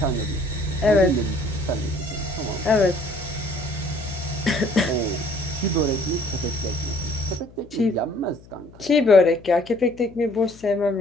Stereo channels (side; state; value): left; noise; hum, 23 dB below the sound